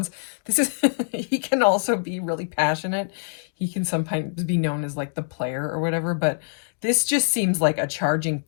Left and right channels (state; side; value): silent; right; digital silence